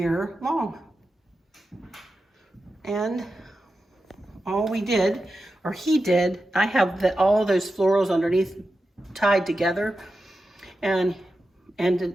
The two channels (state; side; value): normal; both; correlation 0.91